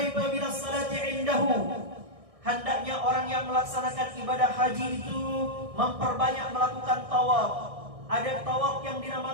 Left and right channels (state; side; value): late; left; 1.6 ms